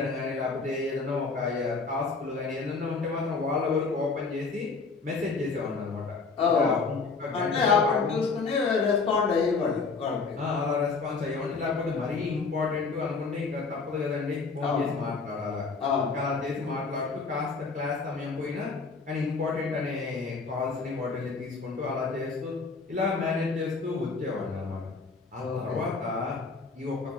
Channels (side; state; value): right; quieter; 4.4 dB